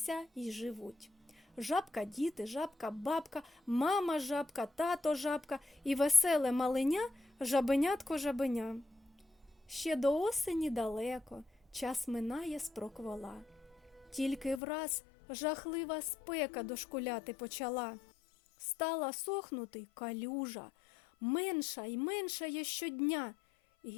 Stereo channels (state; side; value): drops out; right; at 14.6 s